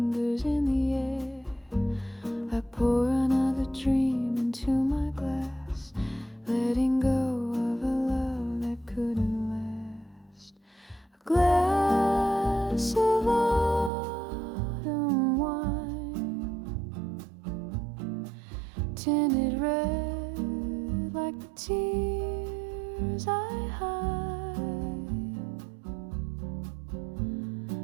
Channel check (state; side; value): drops out; left; at 13.9 s